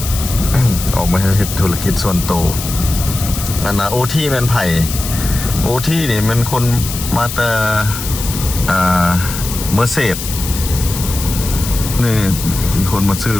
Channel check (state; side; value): noise; left; hiss, 7 dB below the sound